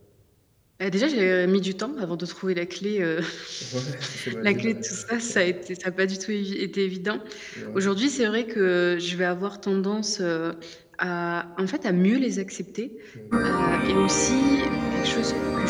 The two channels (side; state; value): both; identical; correlation 1.00